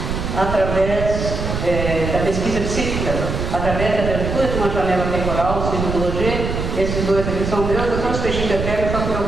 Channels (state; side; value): noise; right; rumble, 3 dB below the sound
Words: através da pesquisa psíquica, através da abertura de uma janela temporal, segundo o Roger. Esses dois aqui são meus, eu sou os peixinhos eternos, só que o meu